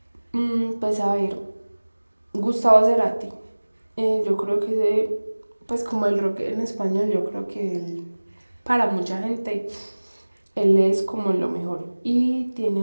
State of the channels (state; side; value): inverted; both; correlation -1.00